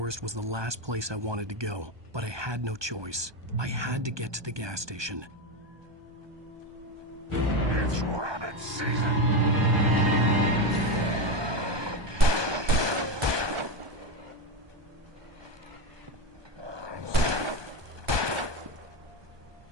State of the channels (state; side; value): late; left; 1.2 ms